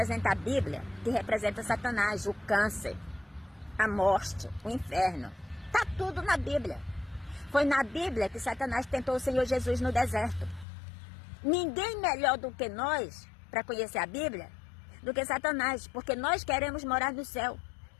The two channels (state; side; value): drops out; right; at 10.7 s